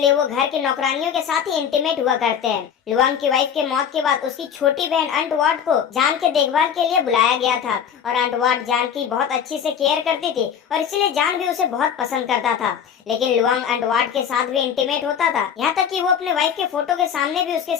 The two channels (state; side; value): quieter; right; 8.0 dB